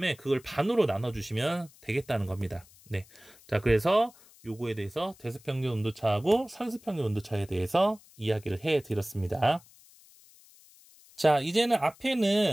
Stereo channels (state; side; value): noise; left; hiss, 26 dB below the sound